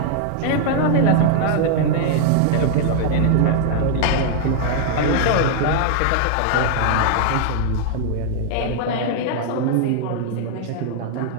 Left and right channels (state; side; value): different; both; correlation -0.01